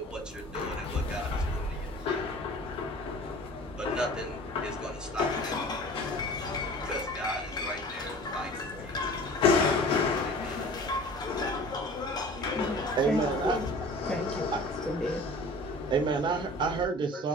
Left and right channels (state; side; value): normal; both; correlation 0.43